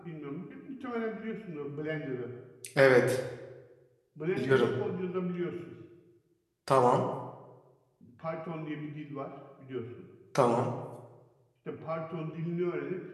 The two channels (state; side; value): identical; both; correlation 1.00